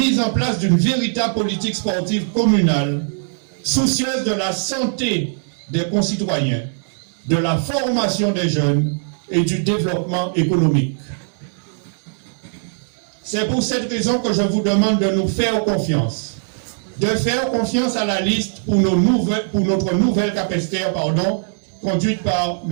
en place d'une véritable politique sportive communale, soucieuse de la santé des concitoyens, de la formation des jeunes et du développement économique. C'est pour cette raison que je vous demande de nous faire confiance, de faire confiance à la liste pour notre nouvelle Capesterre, conduite par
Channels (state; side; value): silent; left; 66 dB below the other